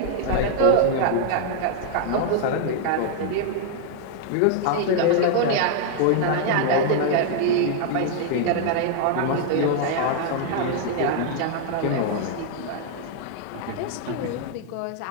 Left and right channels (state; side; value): different; both; correlation 0.00